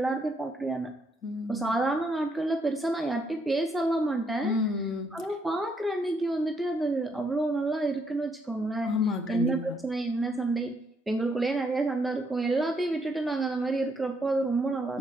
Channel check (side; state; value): both; normal; correlation 0.74